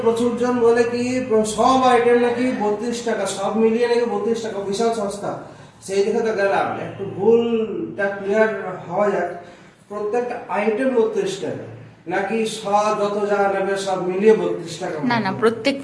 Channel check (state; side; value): identical; both; correlation 1.00